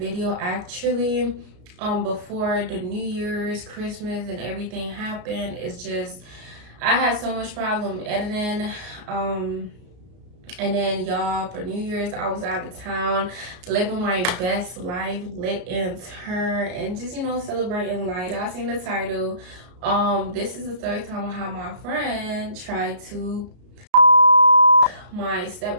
actually, before the New Year's, Christmas, and everything happened. It's just, I had so much problem editing, and then y'all, for New Year's, I was out of town, living my best life, lit in turn, and just, celebrating life. Y'all seen the title. This is the third time I have my friend try to my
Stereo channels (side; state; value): left; late; 33 ms